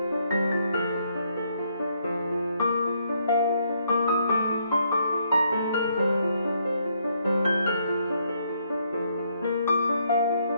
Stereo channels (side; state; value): both; inverted; correlation -0.72